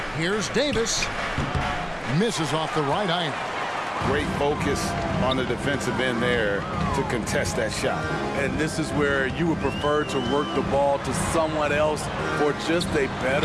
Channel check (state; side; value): identical; both; correlation 1.00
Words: Here's Davis. Misses off the right iron. Great focus on the defensive end there to contest that shot. And this is where you would prefer to work the ball to someone else for just a